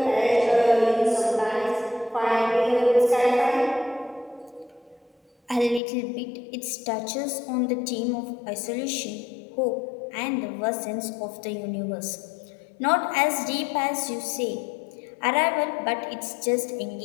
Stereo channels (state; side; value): drops out; right; at 5.8 s